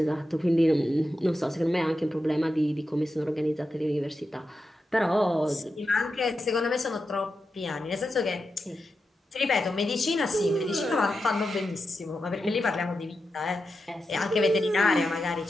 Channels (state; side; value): normal; both; correlation 0.89